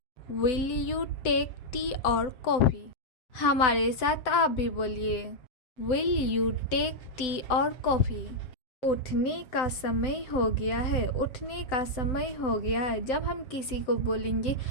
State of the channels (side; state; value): right; late; 7.9 ms